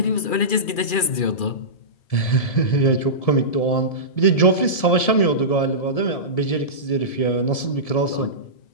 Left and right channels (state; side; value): late; right; 2.4 ms